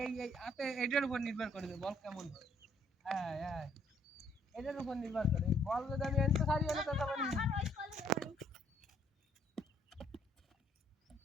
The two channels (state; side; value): normal; both; correlation 0.66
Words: হাতে এটার উপর নির্ভর করে বল কেমন হয় হ্যাঁ হ্যাঁ এটার উপর নির্ভর করে বল যদি আমি এনতে সারি হলে তো তখন